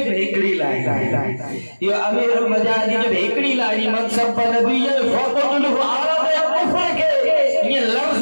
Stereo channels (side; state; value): both; inverted; correlation -1.00